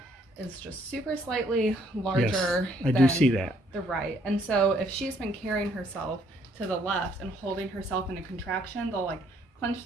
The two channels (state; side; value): normal; both; correlation 0.66